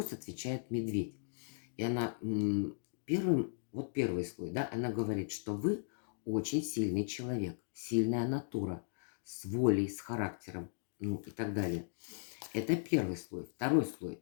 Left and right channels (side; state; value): right; silent; digital silence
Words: отвечает медведь. И она первый слой, да, она говорит, что вы очень сильный человек, сильная натура, с волей, с характером, ну и так далее. Это первый слой. Второй слой,